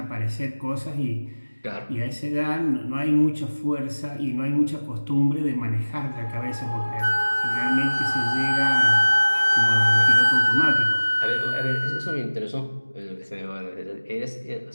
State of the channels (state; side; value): inverted; both; correlation -1.00